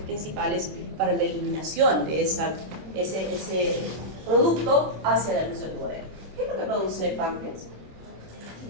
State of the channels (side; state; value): left; late; 27 ms